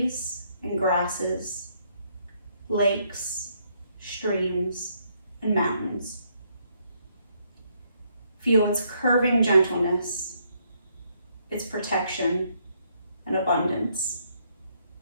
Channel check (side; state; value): both; inverted; correlation -0.72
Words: and grasses, lakes, streams, and mountains. Feel its curving gentleness, its protection and abundance.